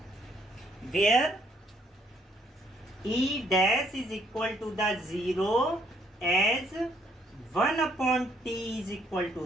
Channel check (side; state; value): both; normal; correlation 0.68